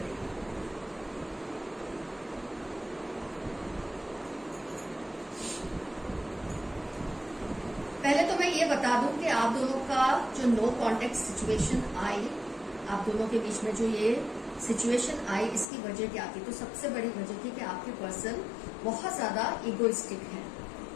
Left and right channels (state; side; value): drops out; right; at 15.7 s